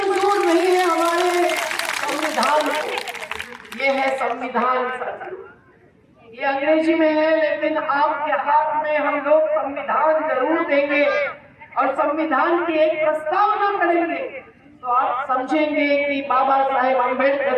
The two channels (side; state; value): both; identical; correlation 1.00